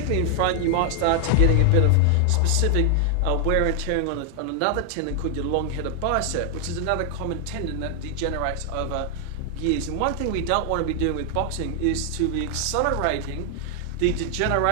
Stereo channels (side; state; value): both; different; correlation 0.00